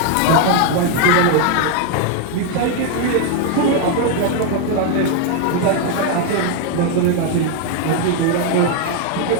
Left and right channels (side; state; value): both; different; correlation 0.01